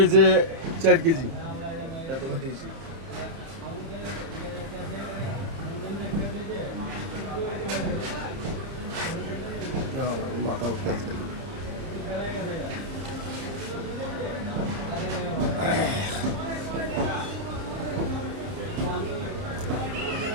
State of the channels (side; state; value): left; late; 30 ms